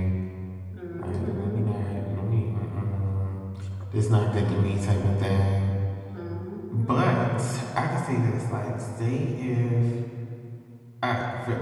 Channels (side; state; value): both; identical; correlation 1.00